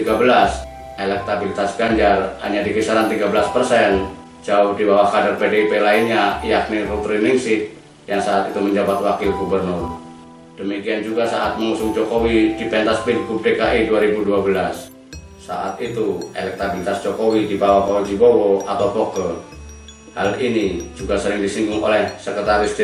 elektabilitas Ganjar hanya di kisaran 13%, jauh di bawah kader PDIP lainnya yakni Ruth Ningsih yang saat itu menjabat wakil gubernur. Demikian juga saat mengusung Jokowi di pentas Pilgub DKI 2012. Saat itu elektabilitas Jokowi di bawah Fauzi Bowo atau Foke. Hal ini juga sering disinggung oleh Sekretaris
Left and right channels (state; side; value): identical; both; correlation 1.00